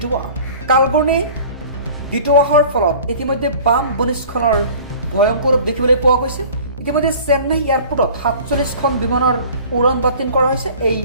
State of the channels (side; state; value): both; inverted; correlation -0.46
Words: কালঘূৰ্ণী দিটোৱাহৰ ফলত ইতিমধ্যে বাম ভূমিস্খলনৰ ভয়ংকৰ ৰূপ দেখিবলৈ পোৱা গৈছে। ইতিমধ্যে চেন্নাই এয়াৰপোৰ্টত 47খন বিমানৰ উৰণ বাতিল কৰা হৈছে। এই